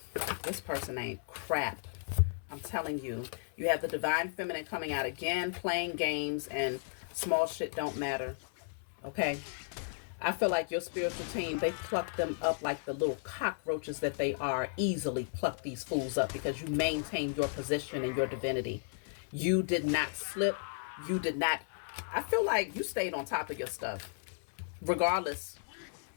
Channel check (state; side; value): silent; right; 55 dB below the other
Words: this person ain't crap. I'm telling you. You have the divine feminine coming out again, playing games, and small shit don't matter. Okay? I feel like your spiritual team, they pluck them up like the little cockroaches that they are. Easily pluck these fools up because you maintain your position and your divinity. You did not slip. You did not. I feel like you stayed on top of your stuff. Regardless,